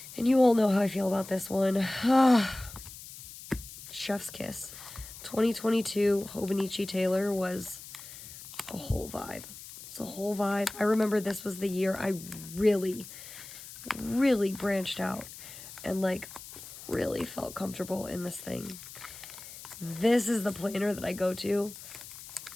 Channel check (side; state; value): left; noise; hiss, 14 dB below the sound